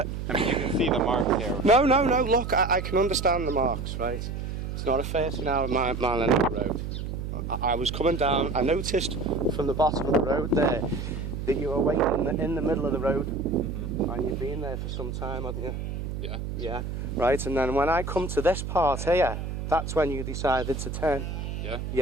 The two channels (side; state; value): right; noise; hum, 5 dB below the sound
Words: mean, you can see the marks here. No. Look, I can understand the marks, right? It's not a 30-hour mile an hour road. I was coming down. I noticed from the bottom of the road there that you were waiting in the middle of the road, and you've been there for some time, hadn't you? Yeah. Yeah. Right. And then when I come to this part here, that's when you decided to turn. Yeah.